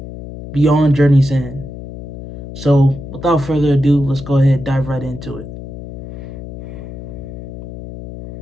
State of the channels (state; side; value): noise; left; hum, 11 dB below the sound